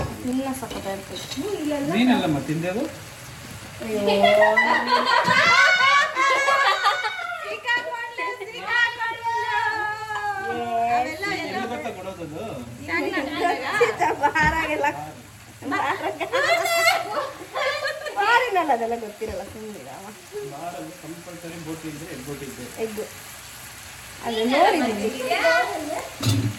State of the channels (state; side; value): identical; both; correlation 1.00